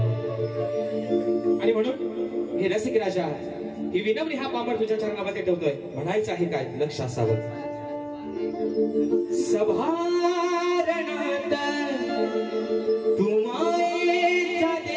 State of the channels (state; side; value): identical; both; correlation 1.00